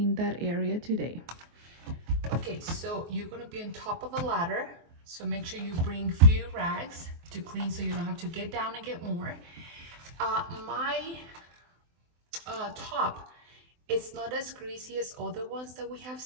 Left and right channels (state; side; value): late; left; 24 ms